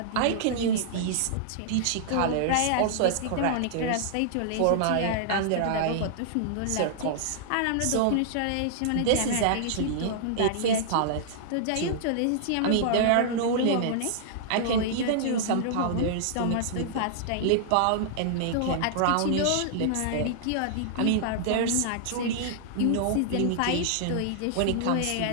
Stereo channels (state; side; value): different; both; correlation -0.01